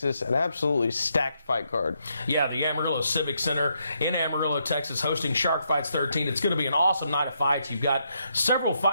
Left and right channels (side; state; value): both; inverted; correlation -0.78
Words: An absolutely stacked fight card. Yeah, the Amarillo Civic Center in Amarillo, Texas, hosting Shark Fights 13. It's going to be an awesome night of fights. You've got several